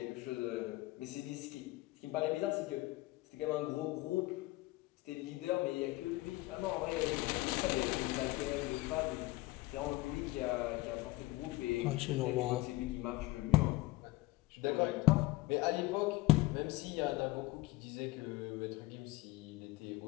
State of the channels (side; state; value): right; quieter; 19.3 dB